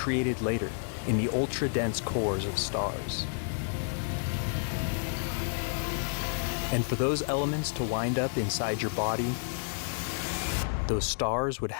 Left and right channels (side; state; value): right; silent; digital silence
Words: later in the ultra-dense cores of stars. And for those elements to wind up inside your body, those stars would